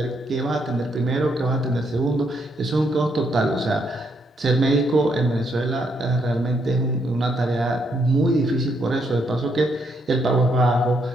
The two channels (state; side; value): normal; both; correlation 0.75